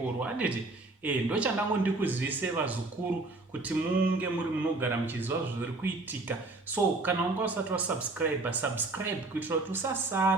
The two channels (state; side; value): quieter; left; 3.2 dB